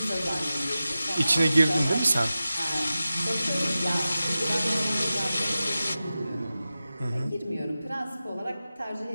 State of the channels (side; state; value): both; inverted; correlation -0.94